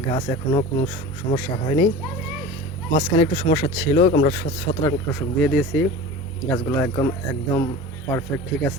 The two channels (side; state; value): both; normal; correlation 0.34